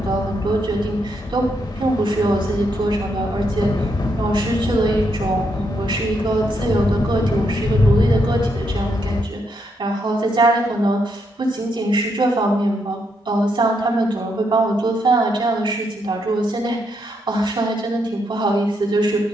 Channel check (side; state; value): both; normal; correlation 0.78